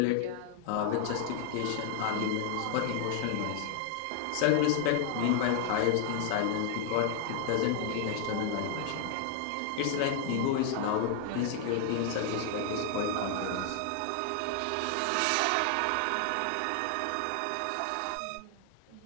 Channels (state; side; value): different; both; correlation 0.00